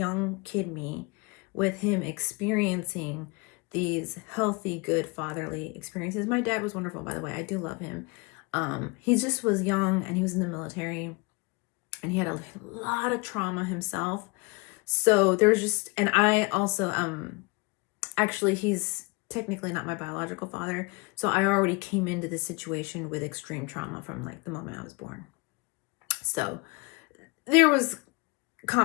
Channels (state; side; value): quieter; right; 28.1 dB